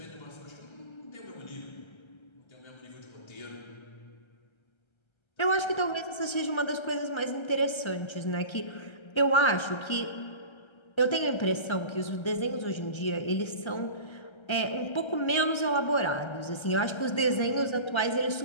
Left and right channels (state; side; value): late; right; 1.3 ms